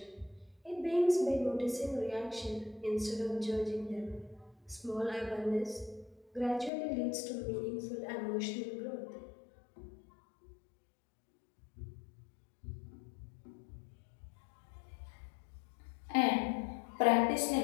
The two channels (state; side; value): drops out; right; at 6.7 s